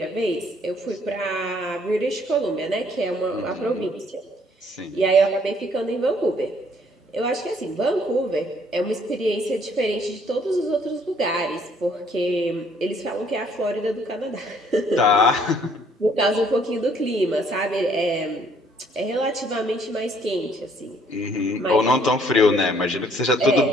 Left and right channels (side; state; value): both; normal; correlation 0.63